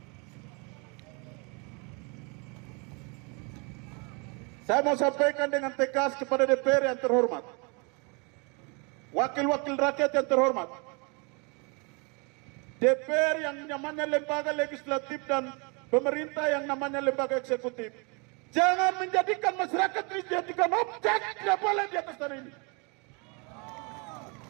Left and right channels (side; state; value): left; quieter; 31.9 dB